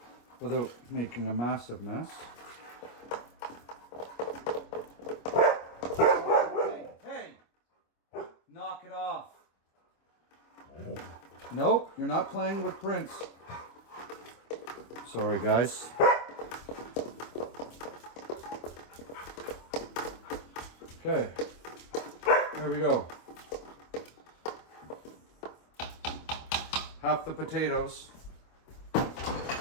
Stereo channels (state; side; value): late; right; 25 ms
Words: Without making a massive mess. Hey, knock it off. Nope, you're not playing with Prince. Sorry, guys. Okay, there we go. Half the potatoes.